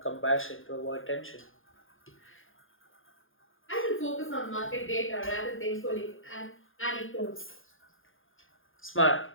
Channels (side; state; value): right; late; 0.59 ms